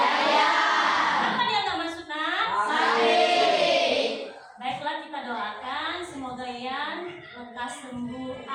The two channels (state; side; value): identical; both; correlation 1.00